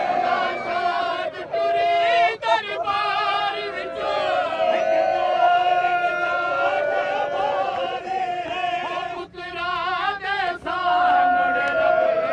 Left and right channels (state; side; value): identical; both; correlation 1.00